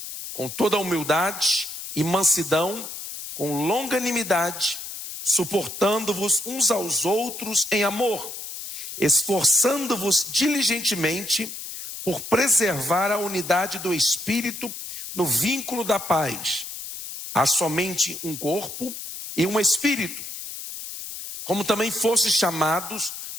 com toda a humildade e mansidão, com longanimidade, suportando-vos uns aos outros em amor, esforçando-vos diligentemente por preservar a unidade do Espírito no vínculo da paz. Há somente um corpo e um Espírito, como também fostes chamados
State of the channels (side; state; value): left; noise; hiss, 9 dB below the sound